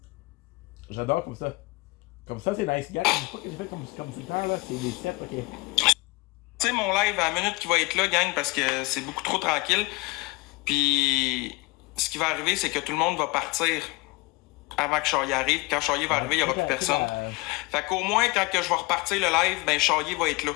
J'adore comme ça. Comme ça, c'est nice, gars. Je sais pas que je fais comme c'est le temps, là. C'est les 7, ok. Tu sais, mon live à la minute qui va être là, gang, parce que c'est beaucoup trop tranquille. Puis, ce qui va arriver, c'est que tout le monde va partir avant que Charrier arrive. Quand Charrier va arriver, il n'y aura plus personne. Fait qu'au moins, quand que je vais repartir le live, ben Charrier va être là.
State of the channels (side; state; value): right; quieter; 24.6 dB